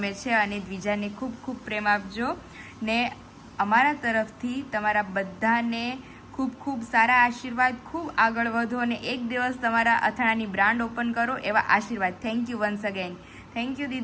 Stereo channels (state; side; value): identical; both; correlation 1.00